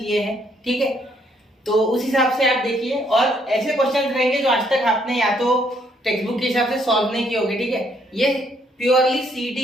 हैं, ठीक है, तो उस हिसाब से आप देखिए। और ऐसे क्वेश्चंस रहेंगे जो आज तक आपने या तो टेक्स्ट बुक के हिसाब से सॉल्व नहीं किए होंगे, ठीक है। ये प्योरली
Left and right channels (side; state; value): both; normal; correlation 0.70